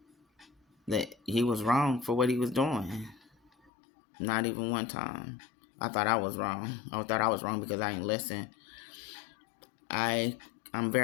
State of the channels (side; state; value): right; drops out; at 3.7 s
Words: that he was wrong for what he was doing. Not even one time. I thought I was wrong. I thought I was wrong because I didn't listen. I'm